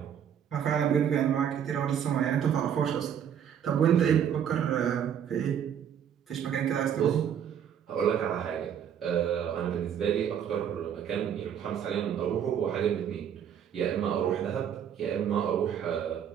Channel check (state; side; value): quieter; left; 8.8 dB